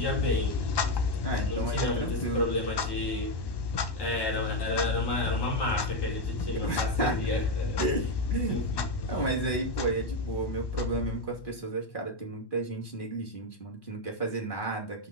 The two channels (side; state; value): right; late; 1.1 ms